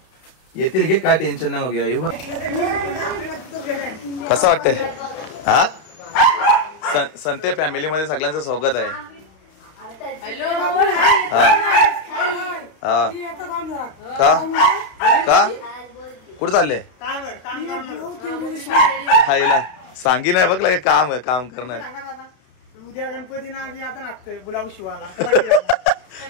येतील घे काय टेन्शन नाही घ्या येऊ कसं वाटतंय हा संते फॅमिली मध्ये सगळ्यांचं स्वागत आहे का का कुठं चालले हायला सांगी नाही बघ काम काम करणार उद्या गणपती ना आता नाचतोय गुलाब शिवाला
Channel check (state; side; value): late; right; 31 ms